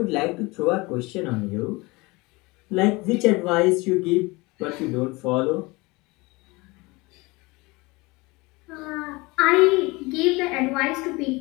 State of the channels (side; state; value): right; quieter; 24.0 dB